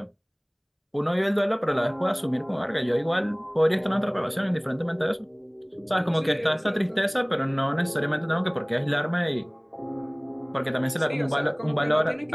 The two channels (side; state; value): both; identical; correlation 1.00